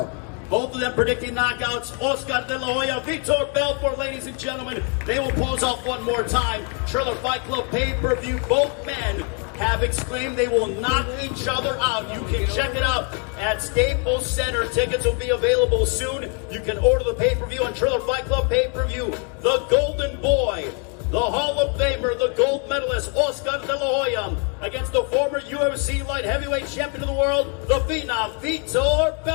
Both of them predicting knockouts. Oscar De La Hoya, Vitor Belfort, ladies and gentlemen. They will pose off one more time. Triller Fight Club pay-per-view. Both men have exclaimed they will knock each other out. You can check it out at Staples Center. Tickets will be available soon. You can order the pay-per-view on Triller Fight Club pay-per-view. The Golden Boy, the Hall of Famer, the gold medalist, Oscar De La Hoya, against the former UFC light heavyweight champion of the world, the phenom, Vitor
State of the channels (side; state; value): right; quieter; 38.7 dB